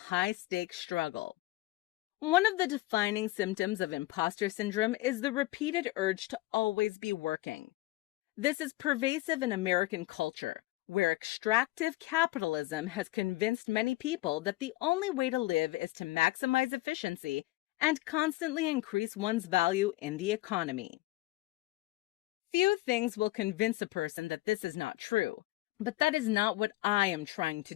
high-stakes struggle. One of the defining symptoms of imposter syndrome is the repeated urge to always be working. This is pervasive in American culture, where extractive capitalism has convinced many people that the only way to live is to maximize efficiency and constantly increase one's value in the economy. Few things will convince a person that this is not true, but that is not what I am trying to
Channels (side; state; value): right; quieter; 19.0 dB